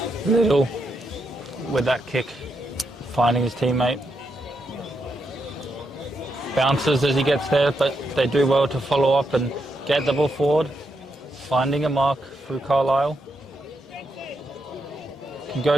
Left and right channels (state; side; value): normal; both; correlation 0.82